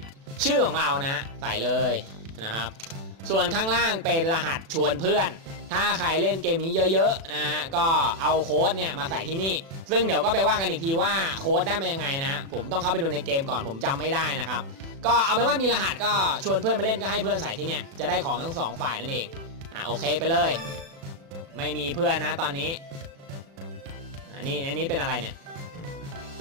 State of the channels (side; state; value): left; late; 36 ms